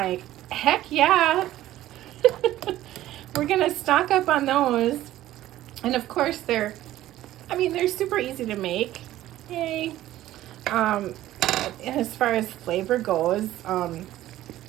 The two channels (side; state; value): left; quieter; 14.3 dB